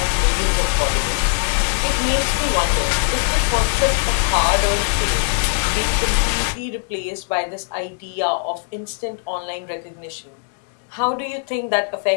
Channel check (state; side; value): silent; right; digital silence